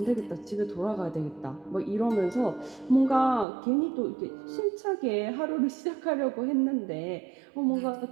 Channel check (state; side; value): drops out; left; at 3.5 s